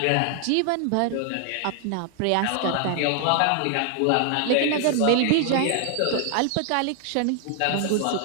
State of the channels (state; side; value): different; both; correlation 0.00